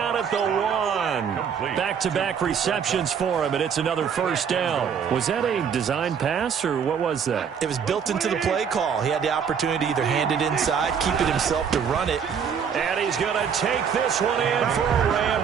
at the 1. Back-to-back receptions for him, and it's another first down. Was that a design pass, or what was that? It was built into the play call. He had the opportunity to either hand it inside, keep it himself to run it. And he's going to take this one in for a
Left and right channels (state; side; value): quieter; left; 7.2 dB